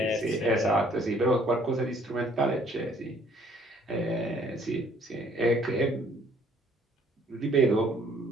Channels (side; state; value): both; normal; correlation 0.61